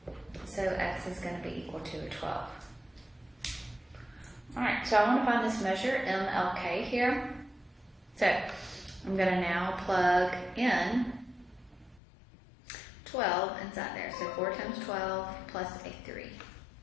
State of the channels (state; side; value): drops out; right; at 12.0 s